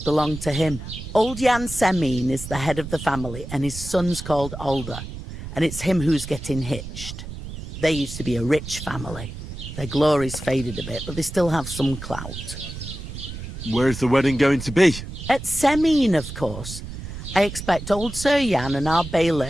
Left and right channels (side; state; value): right; noise; rumble, 10 dB below the sound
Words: belong to him. Old Jan Semine is the head of the family, and his son's called Alder. And it's him who's getting hitched. They used to be a rich family. Their glory's faded a bit, but they still have some clout. Where's the wedding going to be? At Semine, of course. I expect old Sir Jan and our